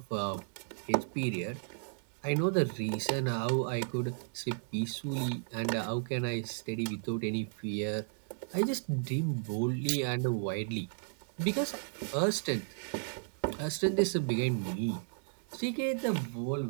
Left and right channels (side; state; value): left; silent; digital silence